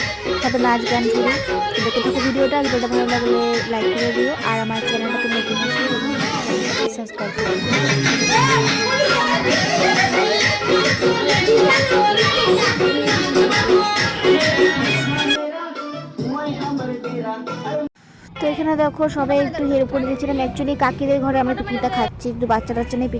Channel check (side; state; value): both; identical; correlation 1.00